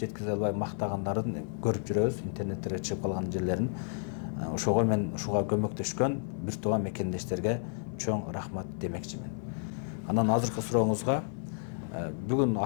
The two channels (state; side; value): silent; right; digital silence